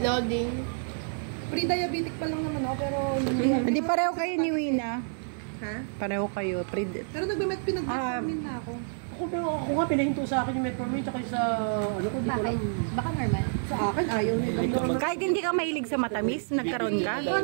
Pre-diabetic pa lang naman ako, pero hindi. Hindi pareho kayo ni Wina. Ha? Pareho kayo. Pero nagbamet pinag-vitamin na ako. Ako nga, pinahinto sa akin yung metformin tsaka sa ano ko, di ko alam. Baka normal. Sa akin, ayaw nila. Kahit hindi ka mahilig sa matamis, nagkaroon ka?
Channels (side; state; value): left; silent; 56 dB below the other